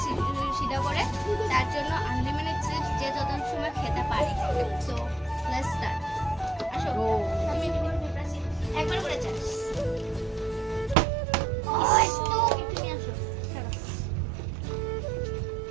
সিধা করে, তার জন্য আনলিমিটেড চিপস যে যত সময় খেতে পারে। So let's start. আসো তুমি একবার করে চাস তুমি আসো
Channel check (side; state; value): left; drops out; at 11.0 s